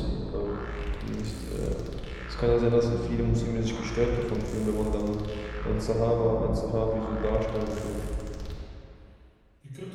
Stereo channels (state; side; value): identical; both; correlation 1.00